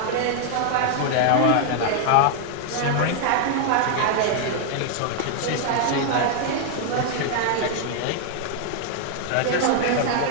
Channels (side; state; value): both; different; correlation 0.00